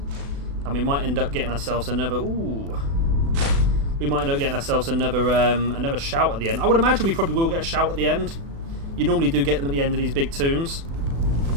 And we might end up getting ourselves another... Ooh. We might end up getting ourselves another another shout at the end. I would imagine we probably will get a shout at the end. You normally do get them at the end of these big tombs.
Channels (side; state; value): left; late; 36 ms